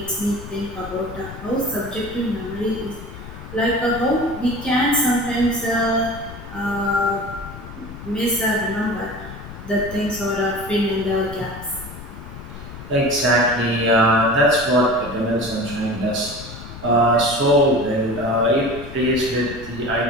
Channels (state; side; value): noise; left; rumble, 13 dB below the sound